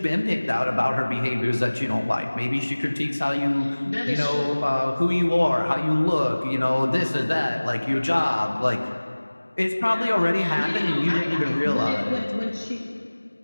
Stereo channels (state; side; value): inverted; both; correlation -1.00